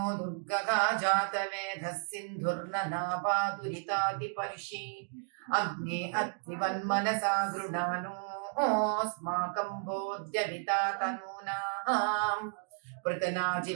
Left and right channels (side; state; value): left; silent; 56 dB below the other